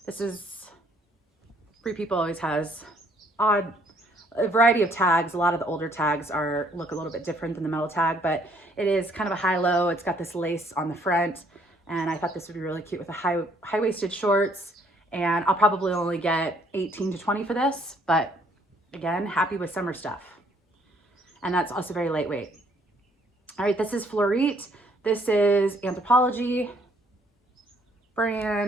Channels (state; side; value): normal; both; correlation 0.64